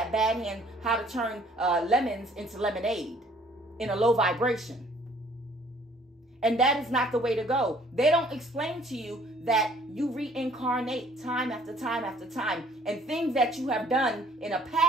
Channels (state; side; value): normal; both; correlation 0.58